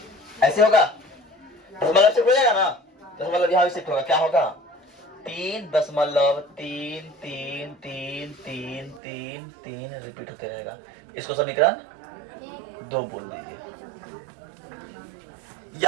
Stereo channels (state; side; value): drops out; left; at 9.0 s